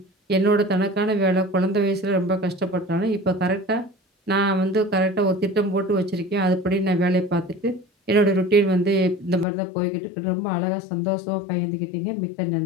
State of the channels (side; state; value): right; drops out; at 9.5 s